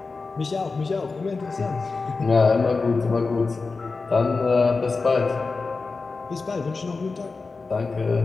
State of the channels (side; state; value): right; quieter; 4.1 dB